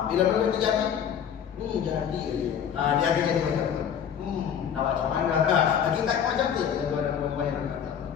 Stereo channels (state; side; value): quieter; right; 8.4 dB